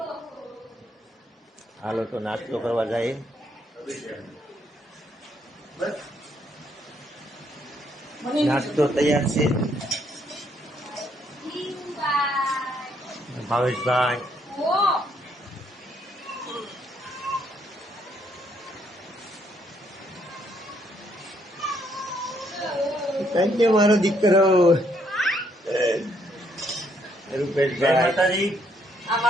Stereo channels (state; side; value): normal; both; correlation 0.71